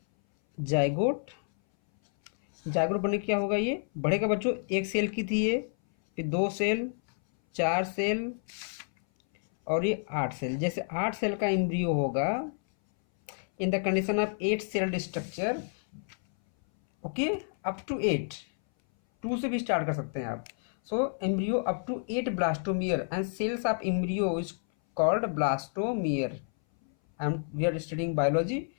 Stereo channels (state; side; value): silent; right; 58 dB below the other